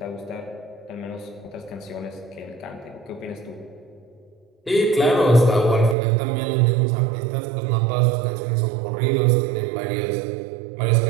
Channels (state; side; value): drops out; left; at 6.0 s